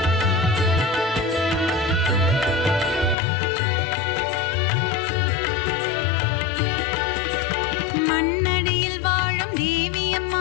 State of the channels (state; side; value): drops out; right; at 3.2 s